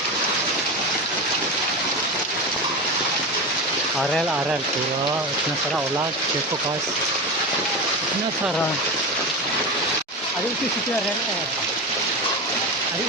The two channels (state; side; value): normal; both; correlation 0.22